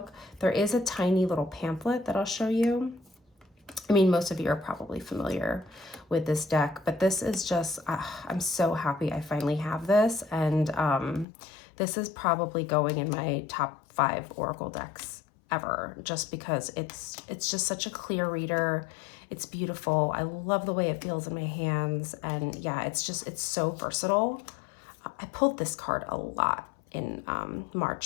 There is a tiny little pamphlet that I'll show you. I mean, most of you are probably familiar with this deck, but this is just, I'm so happy I finally have this. And this is probably going in my top 5 Oracle decks ever, just because it's just such a clear reader. It's beautiful. I love the way it feels in my hands. And yeah, it's so versatile. I pulled this card a lot in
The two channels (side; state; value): right; drops out; at 11.2 s